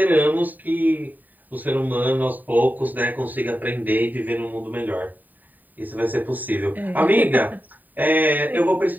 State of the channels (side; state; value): left; late; 0.086 ms